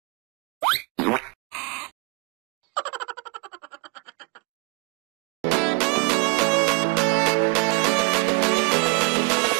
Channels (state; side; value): quieter; left; 28.9 dB